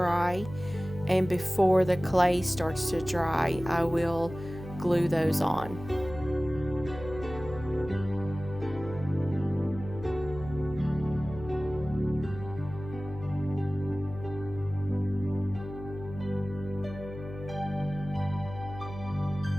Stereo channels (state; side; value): noise; left; hum, 12 dB below the sound